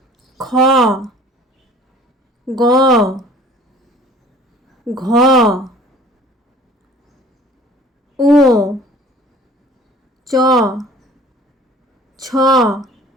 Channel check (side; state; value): both; normal; correlation 0.50